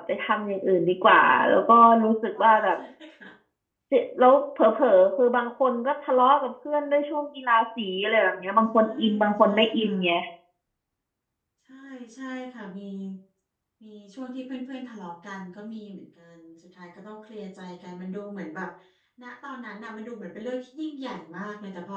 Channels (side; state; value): both; identical; correlation 1.00